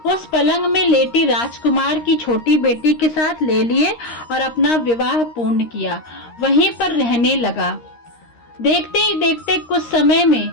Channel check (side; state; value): right; late; 13 ms